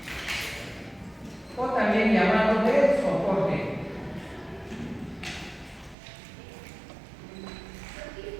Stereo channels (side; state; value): left; drops out; at 6.0 s